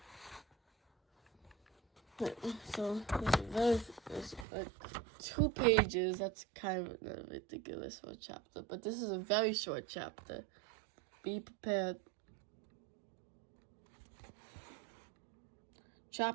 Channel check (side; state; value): left; drops out; at 4.5 s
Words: So it's like 2 pages. That's kind of ridiculous for a chapter, but this is a very short chapter. Be prepared.